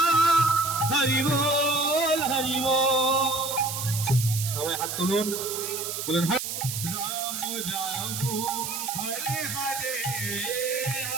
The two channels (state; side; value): noise; right; hiss, 5 dB below the sound